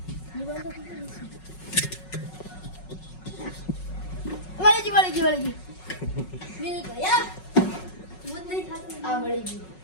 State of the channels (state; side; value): late; right; 5.4 ms